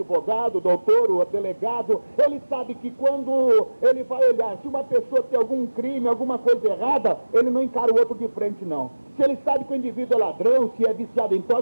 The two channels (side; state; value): both; inverted; correlation -1.00